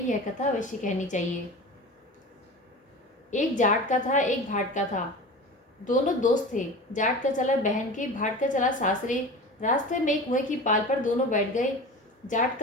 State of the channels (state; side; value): normal; both; correlation 0.33